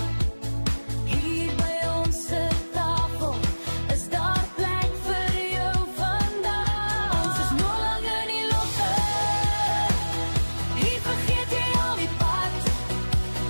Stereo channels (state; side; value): inverted; both; correlation -1.00